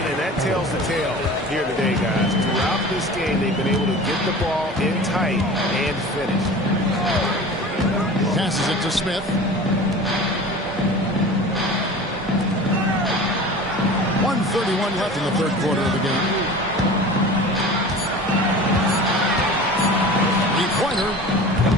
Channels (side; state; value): both; normal; correlation 0.38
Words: that tells the tale here today, guys. Throughout this game, they've been able to get the ball in tight and finish. Passes it to Smith. 1:31 left in the third quarter of the game. 3-pointer.